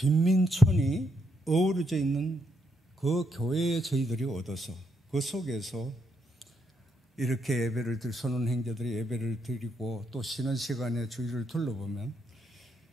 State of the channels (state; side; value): normal; both; correlation 0.77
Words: 어우러져 있는 그 교회에 저희들이 얻어서 그 속에서 이렇게 선언 형제들이 예배를 드리고 또 쉬는 시간에 주위를 둘러보면